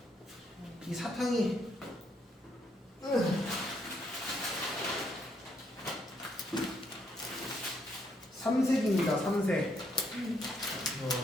이 사탕이. 삼색입니다. 삼색.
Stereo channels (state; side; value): normal; both; correlation 0.73